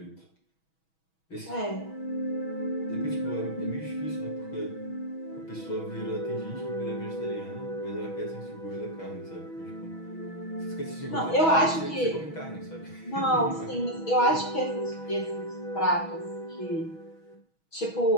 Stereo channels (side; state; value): right; late; 6.2 ms